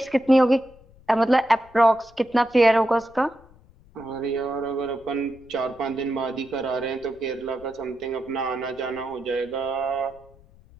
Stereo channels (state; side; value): noise; left; rumble, 26 dB below the sound